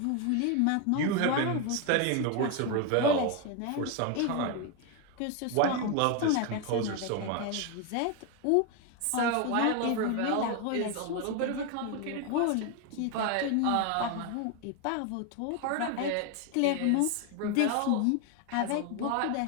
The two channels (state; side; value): different; both; correlation 0.01